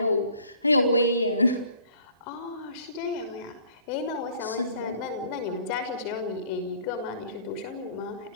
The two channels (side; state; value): both; inverted; correlation -0.53